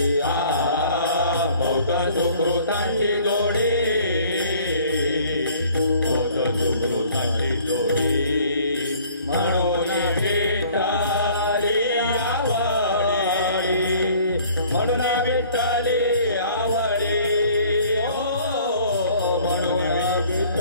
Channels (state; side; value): inverted; both; correlation -0.54